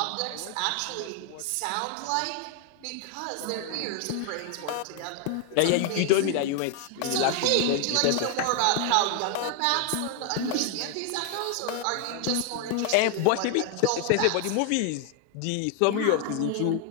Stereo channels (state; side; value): different; both; correlation 0.00